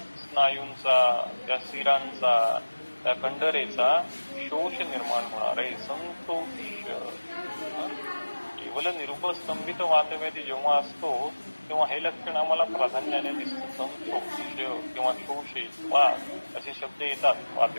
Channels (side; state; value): both; inverted; correlation -1.00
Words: स्नायूंचा, त्या शिरांचा, त्या कंडरेचा शोष निर्माण होणार आहे. संतोष. केवळ निरुपस्तंभित वातव्याधी जेव्हा असतो तेव्हा हे लक्षण आम्हाला प्राधान्याने दिसतं. संतोष किंवा शोषे वा असे शब्द येतात